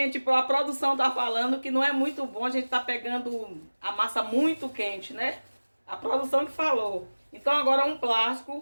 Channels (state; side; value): inverted; both; correlation -1.00